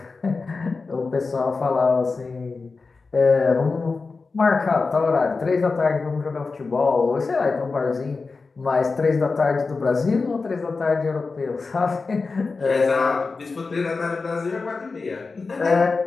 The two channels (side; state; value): right; quieter; 4.2 dB